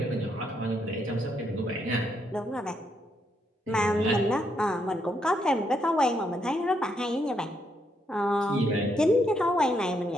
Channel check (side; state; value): both; normal; correlation 0.77